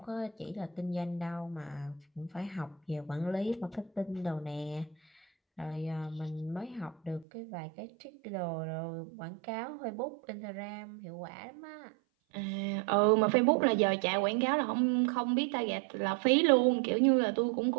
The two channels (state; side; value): drops out; left; at 7.2 s